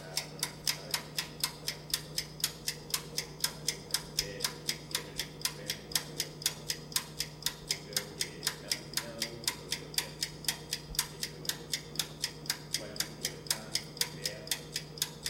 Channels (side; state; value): both; identical; correlation 1.00